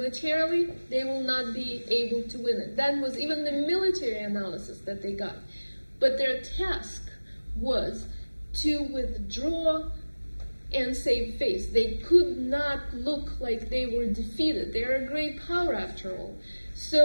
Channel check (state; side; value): inverted; both; correlation -1.00